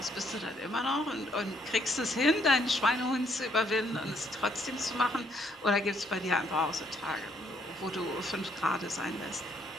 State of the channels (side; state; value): both; normal; correlation 0.69